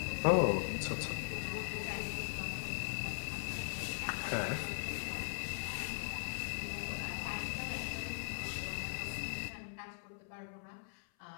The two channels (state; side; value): silent; right; 51 dB below the other